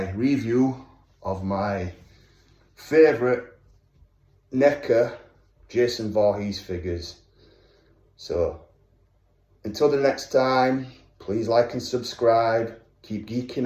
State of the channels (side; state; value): both; identical; correlation 1.00